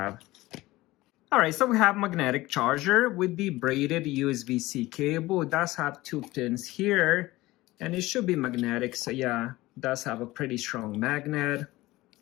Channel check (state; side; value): quieter; right; 18.7 dB